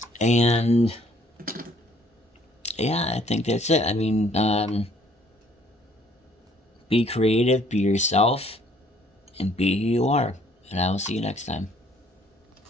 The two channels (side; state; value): both; normal; correlation 0.62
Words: And yeah, I think that's it. I mean, be creative, be yourself, and be who you are. And I will see you next time.